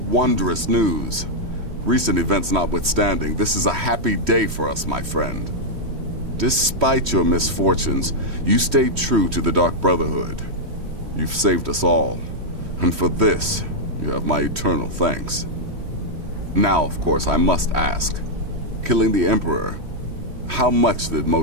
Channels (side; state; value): left; late; 3.1 ms